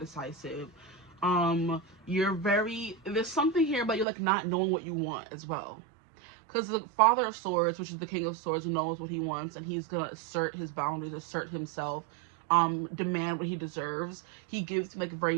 You're very, there's something here about you like not knowing what you want as well. Because the Father of Swords, which is the King of Swords, knows what he wants, and he's gonna assert his boundaries, assert himself, demand what he deserves. He gives like very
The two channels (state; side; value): drops out; left; at 4.0 s